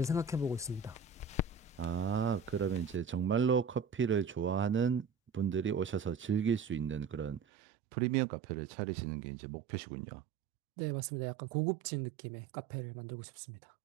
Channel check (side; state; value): left; drops out; at 7.4 s